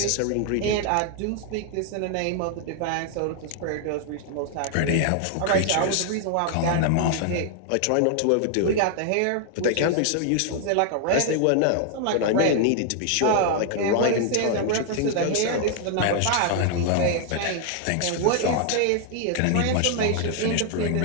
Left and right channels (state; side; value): different; both; correlation 0.00